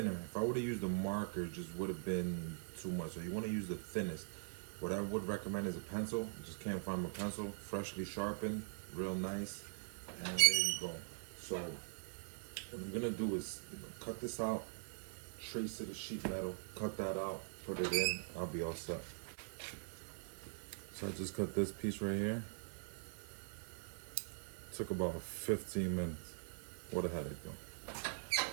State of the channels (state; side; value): silent; left; digital silence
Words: If I would have used a marker, it just would have been too much. So you want to use the thinnest. What I would recommend is a pencil. Just can't find my pencil. Freshly sharpened, real nice. And there you go. So what I'm gonna do is cut this out, trace to the sheet metal, cut that out, put it in, I'll be all set. So I just cut this piece right here. Took about 15 minutes. What a headache though.